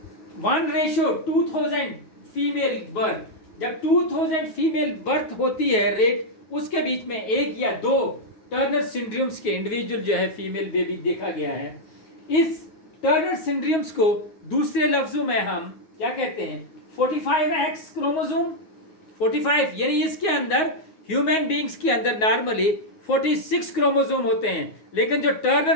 ratio 2000 female birth, जब 2000 female birth होती है rate, उसके बीच में एक या दो टर्नर सिंड्रोम्स के इंडिविजुअल जो है फीमेल बेबी देखा गया है। इस टर्नर सिंड्रोम्स को दूसरे लफ्जों में हम क्या कहते हैं, 45X क्रोमोसोम। 45 यानी इसके अंदर ह्यूमन बींग्स के अंदर नॉर्मली 46 क्रोमोसोम होते हैं, लेकिन जो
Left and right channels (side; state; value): right; late; 9.5 ms